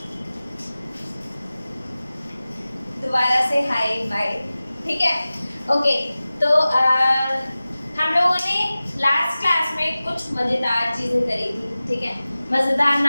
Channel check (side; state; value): both; inverted; correlation -0.97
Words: दोबारा से hi bye, ठीक है। ओके, तो हम लोगों ने लास्ट क्लास में कुछ मज़ेदार चीज़ें करी थी, ठीक है। मज़ेदार